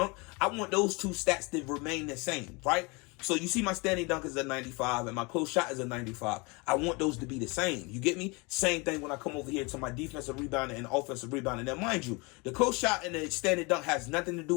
I want those two stats to remain the same, right? So you see my standing dunk is a 95 and my close shot is a 95. I want those to be the same. You get me? Same thing when I come over here to my defensive rebounding and offensive rebounding. Now, mind you, the close shot and the standing dunk has nothing to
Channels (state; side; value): quieter; right; 28.1 dB